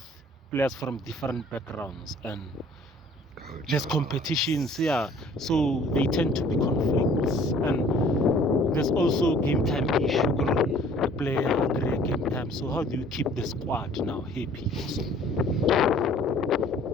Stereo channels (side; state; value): both; normal; correlation 0.53